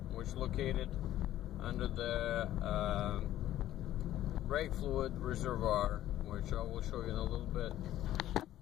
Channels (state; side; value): quieter; right; 13.3 dB